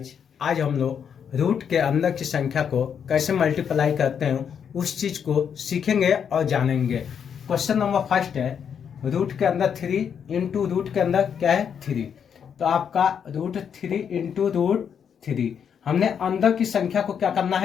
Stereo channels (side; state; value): right; quieter; 7.7 dB